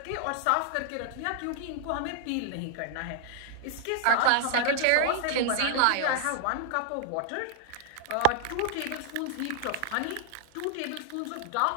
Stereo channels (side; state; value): both; different; correlation 0.00